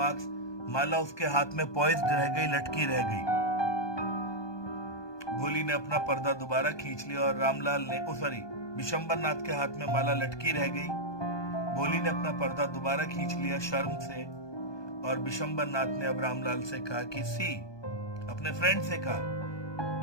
माला उसके हाथ में poised रह गई, लटकी रह गई. भोली ने अपना पर्दा दोबारा खींच लिया और रामलाल ने बिशंबर नाथ के हाथ में माला लटकी रह गई. भोली ने अपना पर्दा दोबारा खींच लिया शर्म से, और बिशंबर नाथ ने अब रामलाल से कहा कि अपने फ्रेंड से कहा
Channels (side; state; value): right; late; 1.2 ms